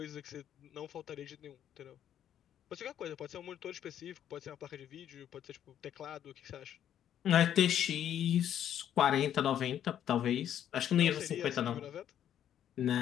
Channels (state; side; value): quieter; right; 10.3 dB